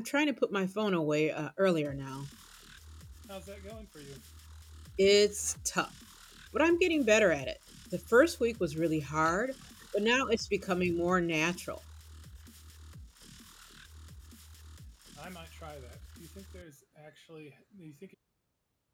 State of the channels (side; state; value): both; identical; correlation 1.00